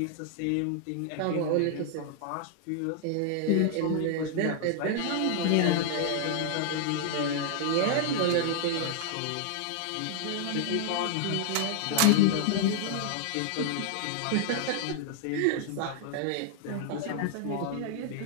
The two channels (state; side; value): different; both; correlation 0.00